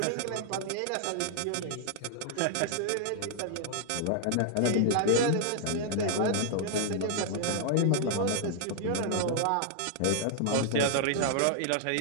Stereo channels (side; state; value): both; different; correlation -0.01